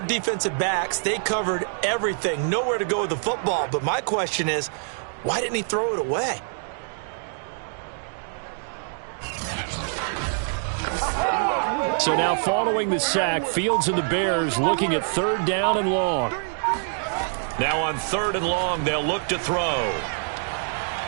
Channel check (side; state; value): left; silent; digital silence